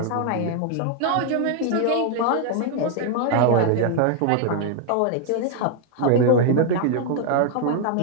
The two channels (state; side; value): different; both; correlation 0.00